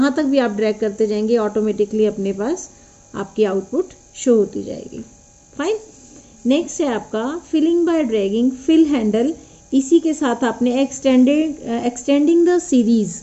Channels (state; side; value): identical; both; correlation 1.00